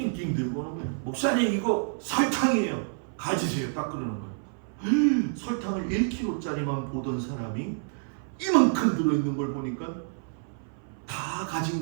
들고 오는 거예요. 목사님 이거 설탕이에요. 가지세요. 딱 그러는 거예요. 설탕을 1kg짜리만 보던 사람이 이만큼 들어있는 걸 보니까 다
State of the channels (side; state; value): left; silent; 59 dB below the other